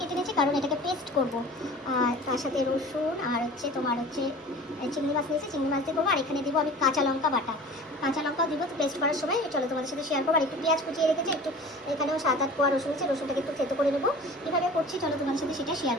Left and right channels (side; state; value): both; normal; correlation 0.41